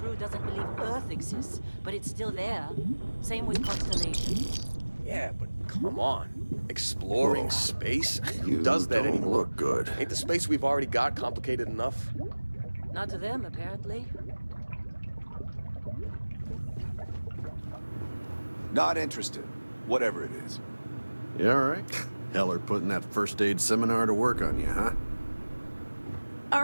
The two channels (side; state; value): both; inverted; correlation -1.00